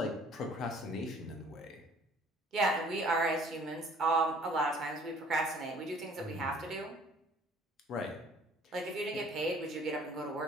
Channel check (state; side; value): normal; both; correlation 0.54